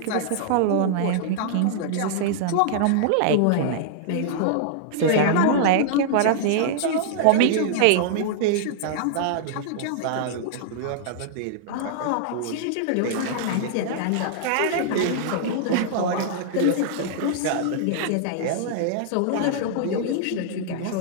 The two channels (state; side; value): different; both; correlation -0.01